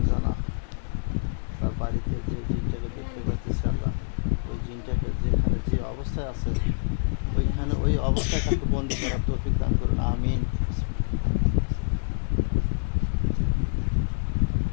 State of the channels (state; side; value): silent; right; digital silence